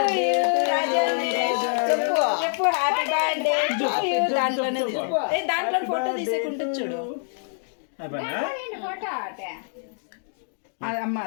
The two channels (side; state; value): right; silent; digital silence